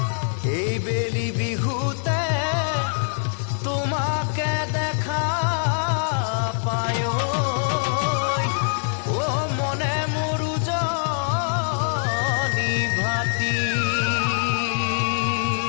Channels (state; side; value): silent; right; digital silence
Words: এই বেলি বিহুতে তোমাকে দেখা পায়